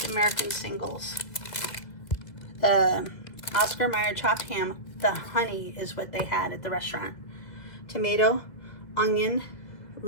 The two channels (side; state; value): right; late; 2.3 ms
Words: American singles, the Oscar Mayer chopped ham. The honey is what they had at the restaurant. Tomato, onion,